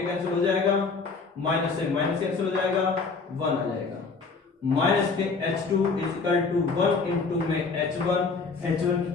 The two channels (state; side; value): quieter; right; 4.5 dB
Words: कैंसिल हो जाएगा, माइनस से माइनस कैंसिल हो जाएगा, 1 आ जाएगा। माइनस के h2 is equal to 1 into में h1